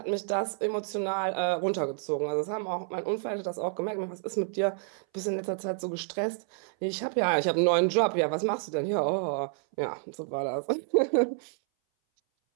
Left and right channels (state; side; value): silent; left; 58 dB below the other